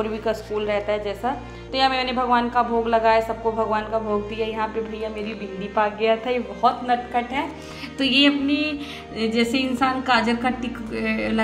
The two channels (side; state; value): both; identical; correlation 1.00